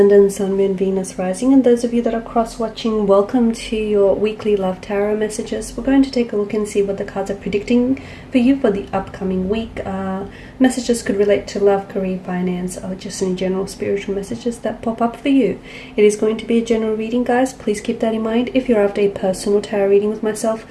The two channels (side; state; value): both; identical; correlation 1.00